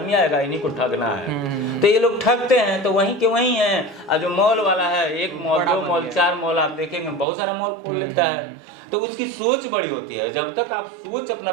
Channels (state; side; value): drops out; left; at 7.2 s